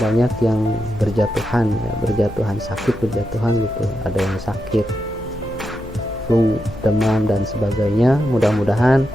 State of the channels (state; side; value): noise; left; hum, 18 dB below the sound